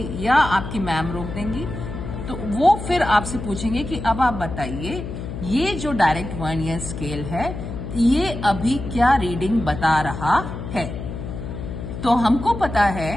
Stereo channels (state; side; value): noise; left; hum, 8 dB below the sound